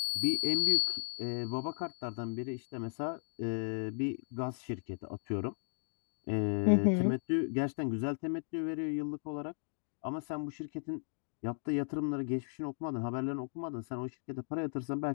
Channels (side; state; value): right; silent; digital silence